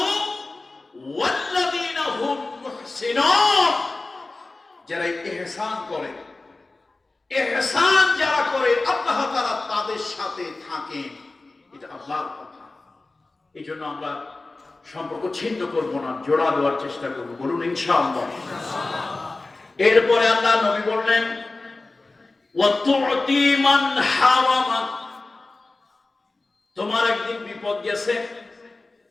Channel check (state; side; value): quieter; right; 3.3 dB